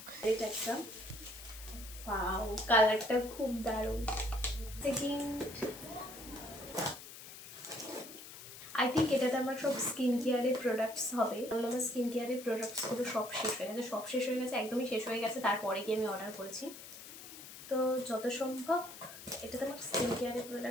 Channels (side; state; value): left; noise; hiss, 14 dB below the sound